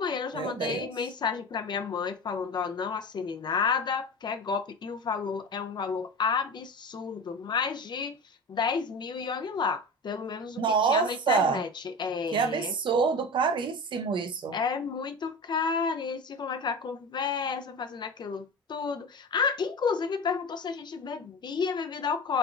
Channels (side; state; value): both; normal; correlation 0.30